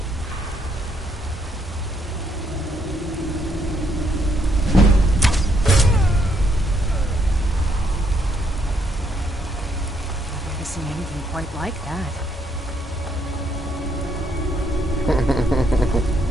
I've never seen anything quite like that.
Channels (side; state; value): both; normal; correlation 0.72